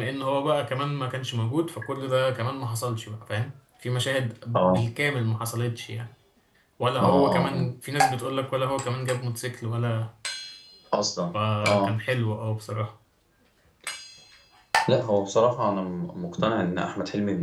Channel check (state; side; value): identical; both; correlation 1.00